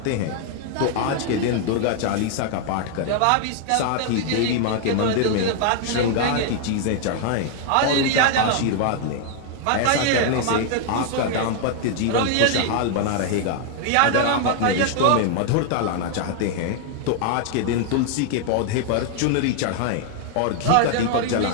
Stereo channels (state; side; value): different; both; correlation 0.00